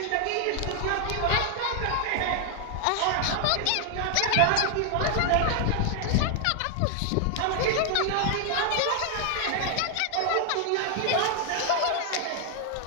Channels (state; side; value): different; both; correlation 0.00